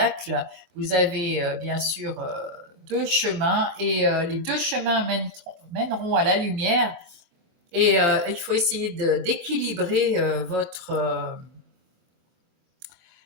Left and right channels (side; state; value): left; late; 23 ms